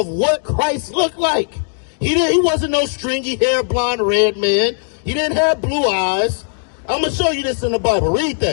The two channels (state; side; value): silent; right; digital silence